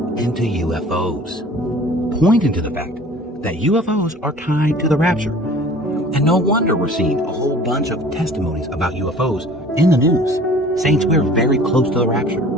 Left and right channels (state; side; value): normal; both; correlation 0.47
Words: into UFOs, pointing to the fact that UFOs are tied to the rapture. And no wonder we're seeing a whole bunch of testimonies about UFOs in the news, saying we're very close to the rapture.